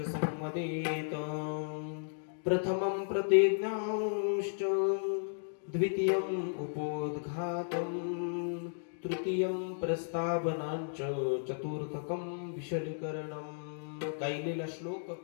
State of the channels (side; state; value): right; silent; digital silence